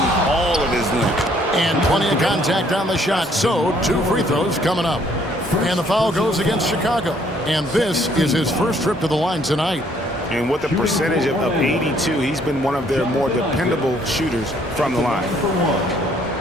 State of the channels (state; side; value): normal; both; correlation 0.64